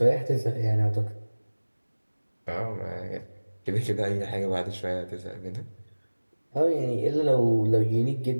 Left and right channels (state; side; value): inverted; both; correlation -1.00